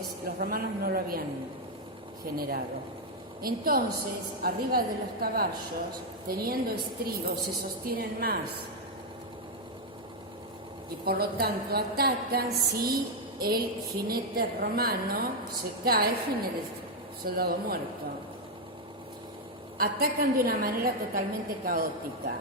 los romanos no lo habían generado. Entonces, arriba de los caballos, teniendo estribos, se sostienen más. Y por lo tanto atacan si el jinete romano se cae, jinete soldado muerto. Atacan de una manera totalmente caótica,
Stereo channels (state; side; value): normal; both; correlation 0.01